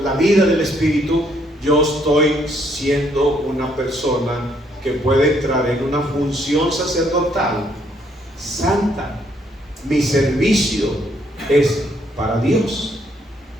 la vida del Espíritu, yo estoy siendo una persona que puede entrar en una función sacerdotal santa. Mi servicio es para Dios.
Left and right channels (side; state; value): both; normal; correlation 0.70